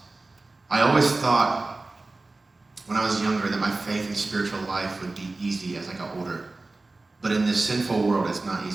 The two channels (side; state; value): left; quieter; 3.3 dB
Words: I always thought when I was younger that my faith and spiritual life would be easy as I got older. But in this sinful world, it's not